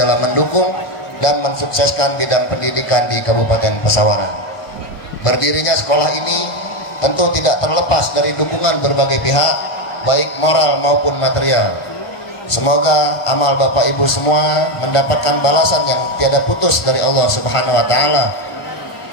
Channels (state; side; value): late; right; 1.4 ms